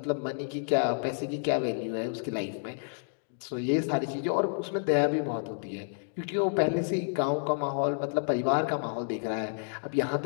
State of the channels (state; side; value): silent; right; digital silence